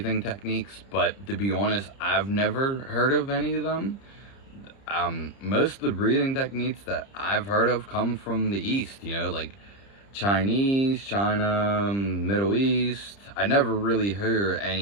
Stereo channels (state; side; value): late; right; 30 ms